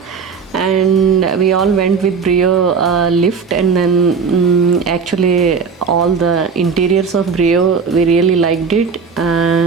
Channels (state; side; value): quieter; left; 5.7 dB